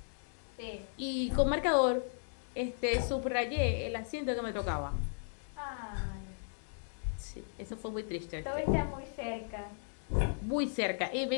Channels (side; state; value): right; silent; digital silence